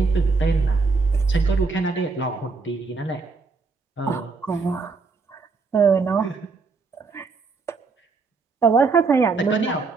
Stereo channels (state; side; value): quieter; left; 4.3 dB